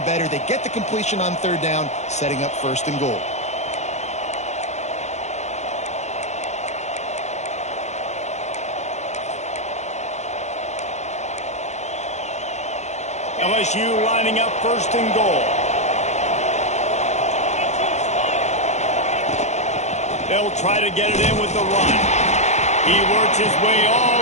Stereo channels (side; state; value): right; late; 0.33 ms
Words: better. They get the completion on 3rd down, setting up 1st and goal. LSU lining up 1st and goal. They'll try to get it in with the run. He works his way all